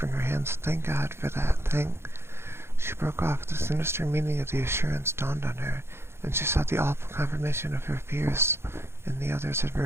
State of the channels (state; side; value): late; left; 0.12 ms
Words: her hands. "Thank God for that. She broke off. The sinister meaning of the assurance dawned on her, and she saw the awful confirmation of her fears in the other's